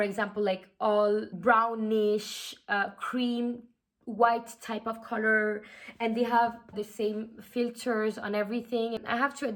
example, like all brownish, cream, white type of color, and they have the same filters on everything. And I have to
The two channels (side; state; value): both; identical; correlation 1.00